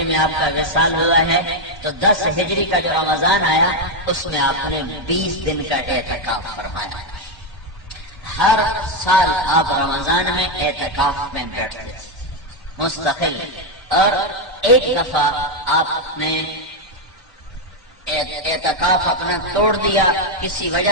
میں آپ کا وصال ہوا ہے تو 10 ہجری کا جو رمضان آیا اس میں آپ نے 20 دن کا اعتکاف فرمایا۔ ہر سال آپ رمضان میں اعتکاف میں بیٹھتے تھے مستقل، اور ایک دفعہ آپ نے اعتکاف اپنا توڑ دیا کسی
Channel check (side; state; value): both; normal; correlation 0.03